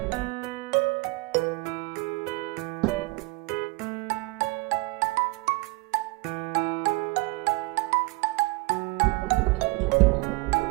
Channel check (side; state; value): left; quieter; 24.3 dB